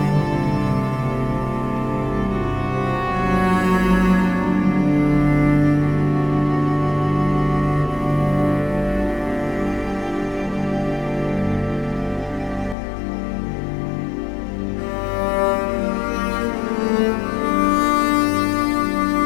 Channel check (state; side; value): drops out; right; at 12.8 s